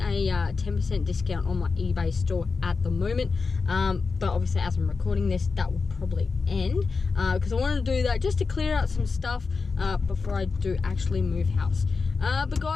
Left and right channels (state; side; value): quieter; right; 4.6 dB